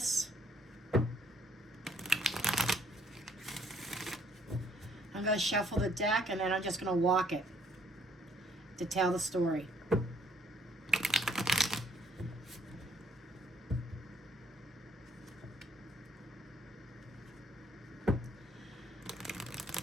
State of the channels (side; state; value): both; normal; correlation 0.65